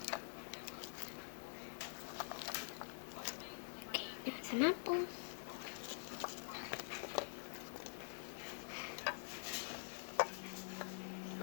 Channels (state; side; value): silent; right; digital silence